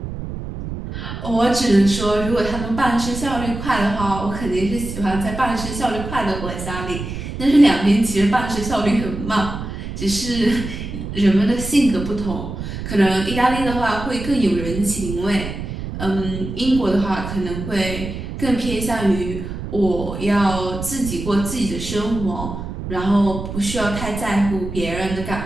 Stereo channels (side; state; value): right; noise; rumble, 7 dB below the sound